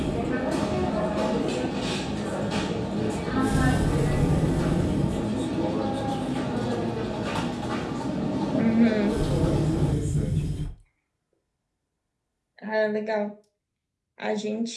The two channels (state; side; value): identical; both; correlation 1.00